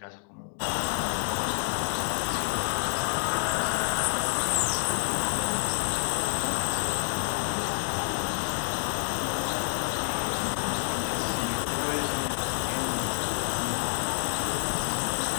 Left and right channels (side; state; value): right; silent; digital silence